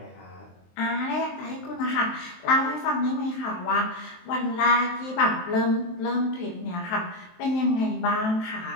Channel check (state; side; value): late; right; 23 ms